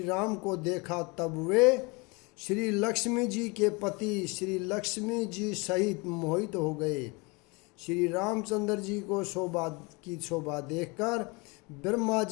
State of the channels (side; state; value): right; quieter; 28.0 dB